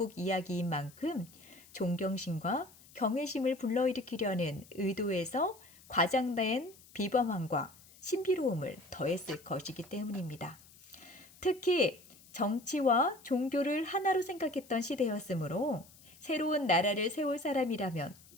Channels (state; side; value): noise; left; hiss, 24 dB below the sound